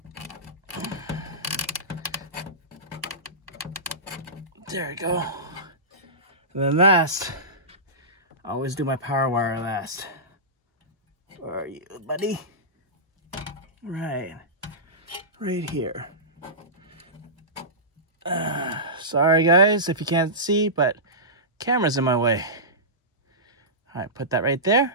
There we go. And then last, I always do my power wire last. Where are you, buddy? Right here. Sorry guys if you can't see, but camera's in my way. All right, put that right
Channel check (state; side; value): normal; both; correlation -0.19